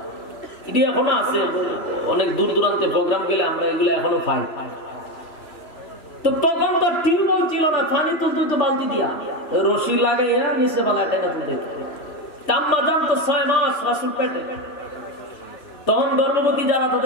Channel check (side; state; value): right; late; 3.4 ms